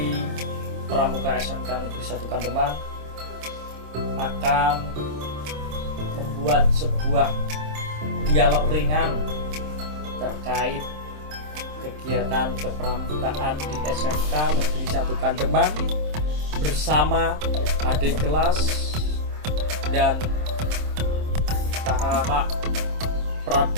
Pramuka SMK Negeri 1 Kandeman akan membuat sebuah dialog ringan terkait kegiatan kepramukaan di SMK Negeri 1 Kandeman bersama adik kelas dan kakak-kakak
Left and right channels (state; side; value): late; left; 26 ms